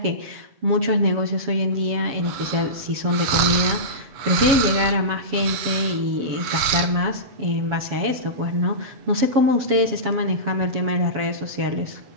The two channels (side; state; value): left; late; 7.3 ms